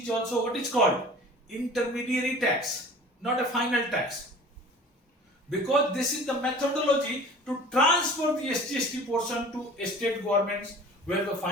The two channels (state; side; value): normal; both; correlation 0.43